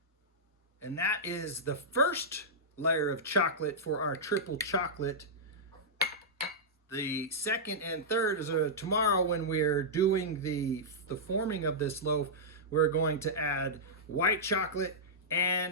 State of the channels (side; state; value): both; normal; correlation -0.12